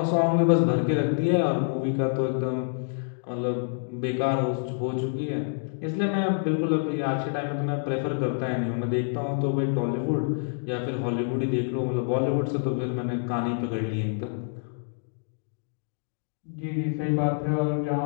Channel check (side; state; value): right; silent; digital silence